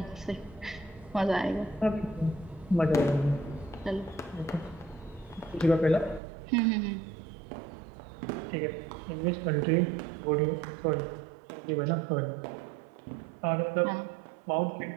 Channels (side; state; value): left; drops out; at 6.2 s